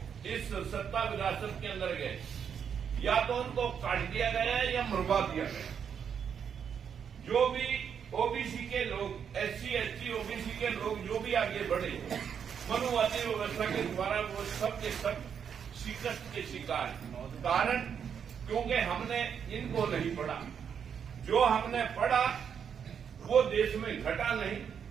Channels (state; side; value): quieter; left; 7.6 dB